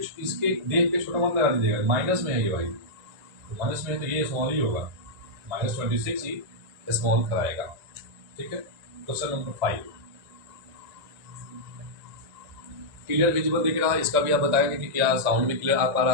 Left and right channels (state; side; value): late; left; 1.9 ms